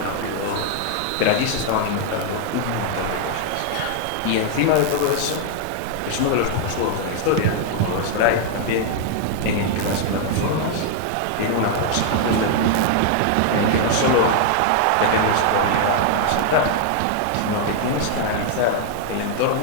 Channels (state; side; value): different; both; correlation 0.00